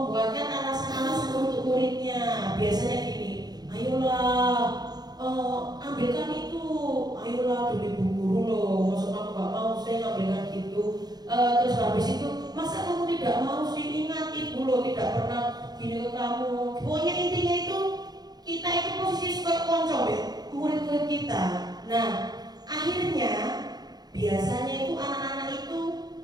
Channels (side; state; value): left; late; 0.19 ms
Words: alasan-alasan untuk muridnya. Biasanya gini, ayolah ambilkan itu, ayolah demi bu guru loh, maksud kamu gak mau saya ngambilkan gitu. Terus habis itu, masa kamu tidak mau sih, ingat ibu loh tidak pernah gini ke kamu. Pokoknya intinya itu kita itu posisi sebagai konco ya, murid-murid kita. Nah, akhirnya biasanya itu anak-anak itu